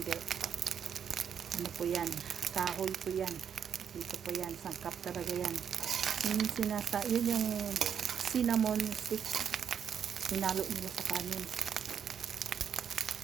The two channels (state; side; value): quieter; left; 8.0 dB